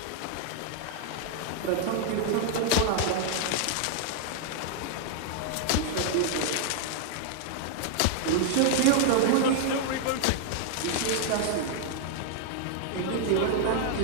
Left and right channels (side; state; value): both; different; correlation -0.01